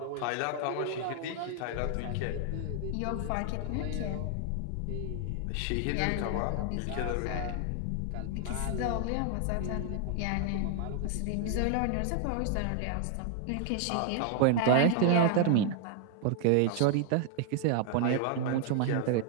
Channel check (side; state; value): both; different; correlation 0.00